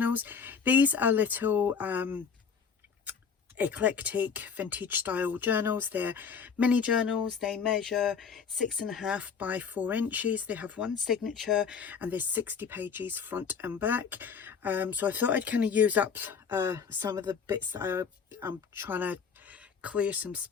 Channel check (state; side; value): quieter; right; 6.2 dB